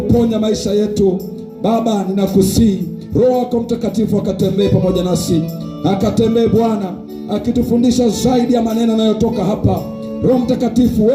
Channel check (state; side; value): identical; both; correlation 1.00